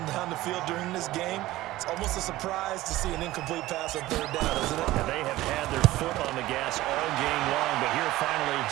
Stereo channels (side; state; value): left; quieter; 16.9 dB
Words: down the field during this game, it's almost a surprise to see an incomplete pass on 3rd down, isn't it? And they have had their foot on the gas all game long, but here finally